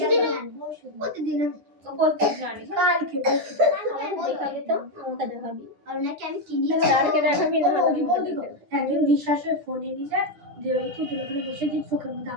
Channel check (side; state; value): left; late; 9.9 ms